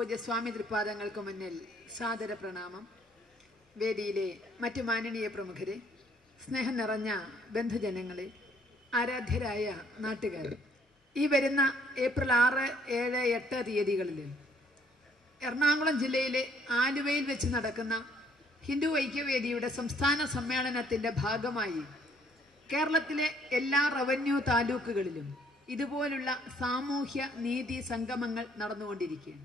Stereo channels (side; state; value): both; normal; correlation 0.64